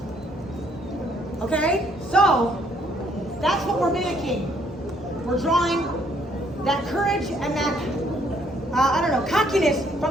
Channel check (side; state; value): both; normal; correlation 0.66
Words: Okay? So, that's what we're mimicking. We're drawing that courage and that, cockiness